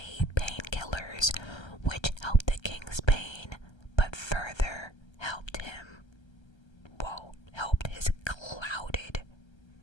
painkillers, which helped the king's pain, but further helped him, helped his clouded.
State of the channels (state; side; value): late; right; 1.3 ms